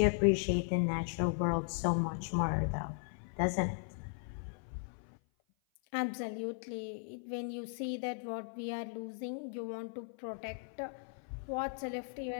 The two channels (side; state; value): right; silent; 53 dB below the other